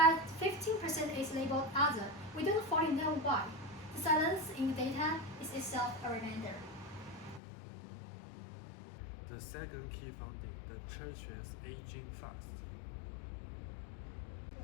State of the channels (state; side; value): drops out; right; at 7.4 s